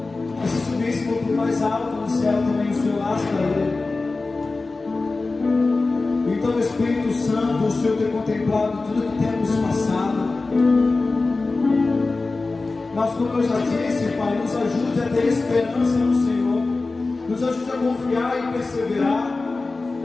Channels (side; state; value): right; quieter; 3.6 dB